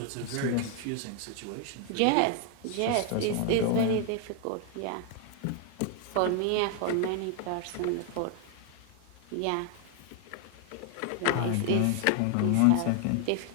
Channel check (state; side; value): different; both; correlation 0.00